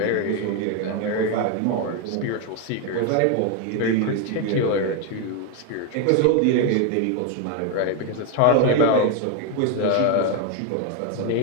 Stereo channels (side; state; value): both; different; correlation 0.02